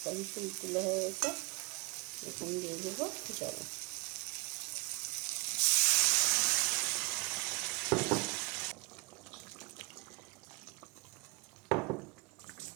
তুলতুলে হয়ে গেছে। এখন দিয়ে দেবো জল।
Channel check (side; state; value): left; quieter; 28.8 dB